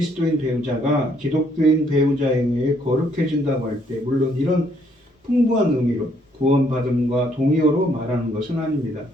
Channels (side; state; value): both; normal; correlation 0.68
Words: 배우자가 기독교인 배우자에 의해 거룩해진다고 할 때 물론 이런 풍부한 의미로 구원받음과 동의어로 말하는 것은 아닙니다.